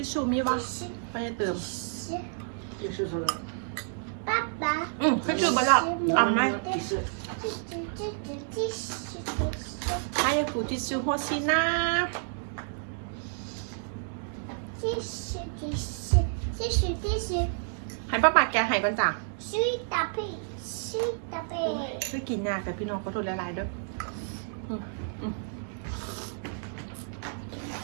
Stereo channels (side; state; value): left; silent; digital silence